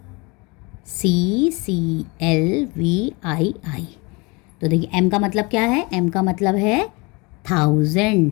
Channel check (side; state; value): right; quieter; 27.3 dB